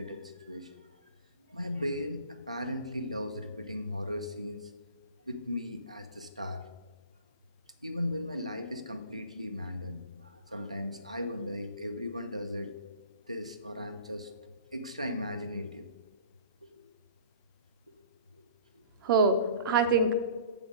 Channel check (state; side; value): inverted; both; correlation -0.44